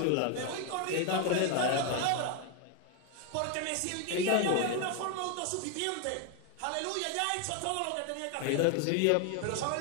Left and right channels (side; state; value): both; different; correlation 0.01